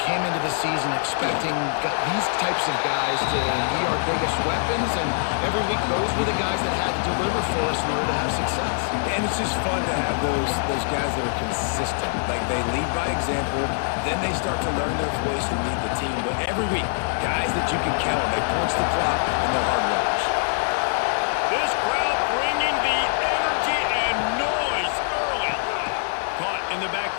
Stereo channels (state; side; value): silent; right; digital silence